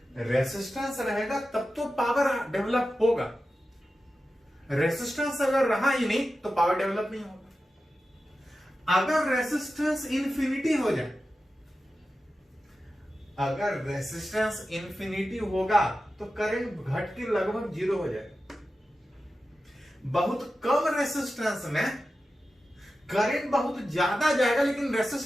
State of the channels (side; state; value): both; normal; correlation 0.92